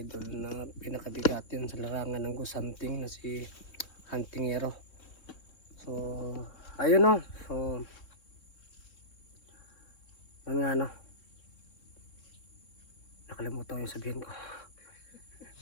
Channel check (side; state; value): right; late; 3.6 ms